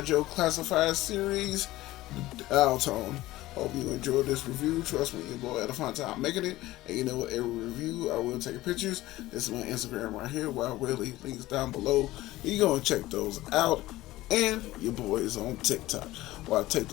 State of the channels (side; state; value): right; quieter; 17.1 dB